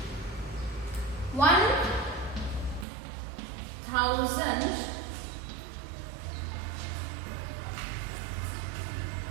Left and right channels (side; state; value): left; drops out; at 2.9 s